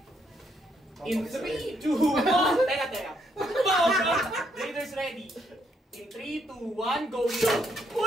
In 3, 2, 1! Teka. Raiders ready. In 3, 2, 1, go shoot!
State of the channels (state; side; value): normal; both; correlation 0.74